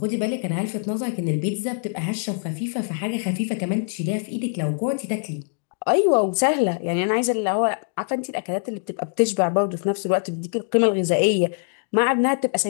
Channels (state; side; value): silent; right; digital silence